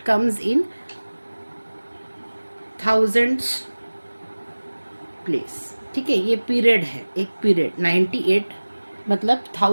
comes in thousands place, ठीक है। ये पीरियड है, एक पीरियड 98 मतलब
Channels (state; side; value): inverted; both; correlation -1.00